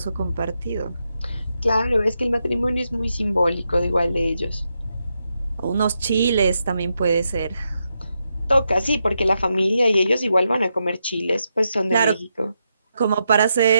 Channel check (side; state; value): both; inverted; correlation -0.84